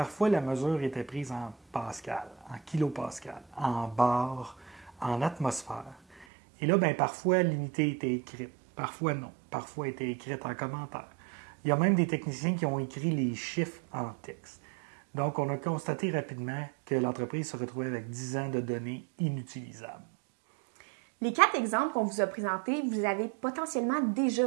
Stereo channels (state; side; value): drops out; left; at 6.2 s